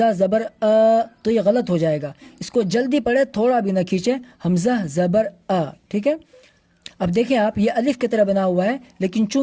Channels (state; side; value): identical; both; correlation 1.00